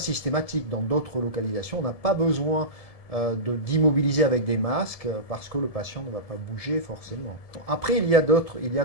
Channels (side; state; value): right; late; 1.7 ms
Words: Dans d'autres localisations, on n'a pas besoin d'immobiliser avec des masques parce que le patient ne va pas bouger forcément. Après, il y a